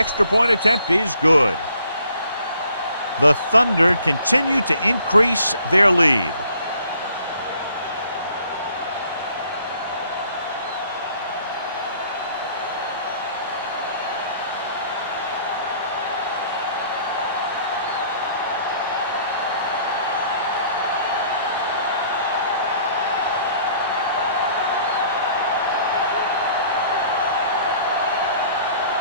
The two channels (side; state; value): both; inverted; correlation -0.59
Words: point attempt is good. The Thunder continue to increase their lead.